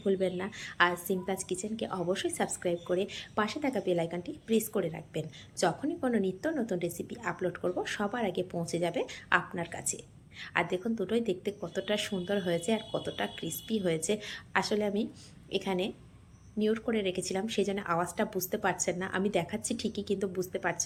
ভুলবেন না। আর সিমতাজ কিচেনকে অবশ্যই সাবস্ক্রাইব করে পাশে থাকা বেল আইকনটি প্রেস করে রাখবেন। যখনই কোনো নিত্য নতুন রেসিপি আপলোড করব সবার আগে পৌঁছে যাবে আপনার কাছে। আর দেখুন দুটোই দেখতে কতটা সুন্দর হয়েছে আর কতটা ক্রিস্পি হয়েছে। আসলে আমি এখানে মিউট করে রেখেছিলাম, সেই জন্য আওয়াজটা বুঝতে পারছেন না। আমি দেখাচ্ছি ঠিকই কিন্তু বুঝতে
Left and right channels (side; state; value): both; identical; correlation 1.00